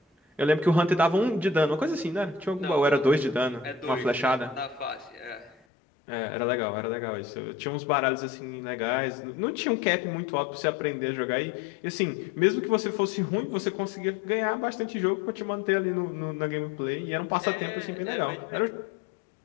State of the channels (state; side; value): drops out; right; at 5.6 s